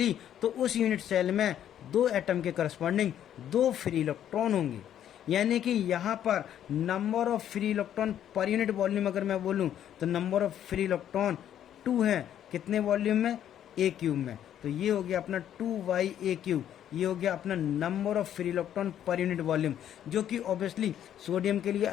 तो उस यूनिट सेल में 2 एटम के करस्पॉन्डिंग 2 फ्री इलेक्ट्रॉन होंगे। यानी कि यहाँ पर number of free electron per unit volume अगर मैं बोलूँ तो नंबर ऑफ फ्री इलेक्ट्रॉन 2 है, कितने वॉल्यूम में, A³ में। तो ये हो गया अपना 2/A³, ये हो गया अपना number of free electron per unit volume, जो कि ऑब्वियसली सोडियम के लिए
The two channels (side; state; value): right; quieter; 10.5 dB